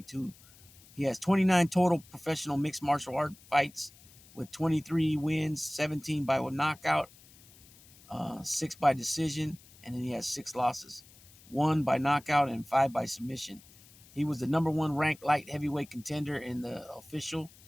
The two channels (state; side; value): noise; left; hiss, 24 dB below the sound